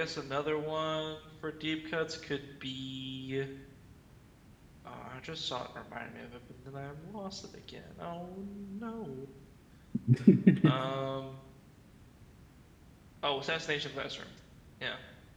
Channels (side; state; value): both; identical; correlation 1.00